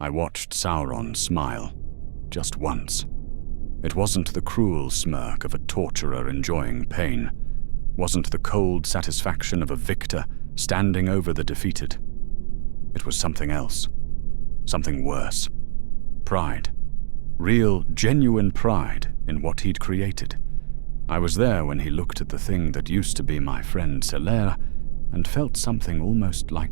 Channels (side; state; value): left; silent; digital silence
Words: I watched Sauron smile, just once. It wasn't the cruel smirk of a torturer enjoying pain, wasn't the cold satisfaction of a victor standing over the defeated. It was something else, something worse. Pride. Real, genuine pride in what he'd created. I was there when he looked at the thing that used to be my friend Silera and felt something almost